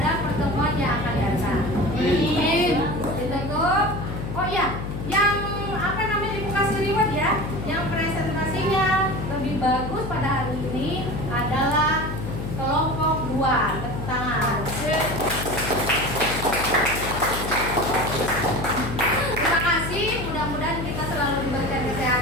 pertemuan yang akan datang. Ditutup. Oh ya, yang apa namanya bagus pada hari ini adalah kelompok 2. Tepuk tangan. Terima kasih, mudah-mudahan kita selalu diberikan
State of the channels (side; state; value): left; noise; hum, 6 dB below the sound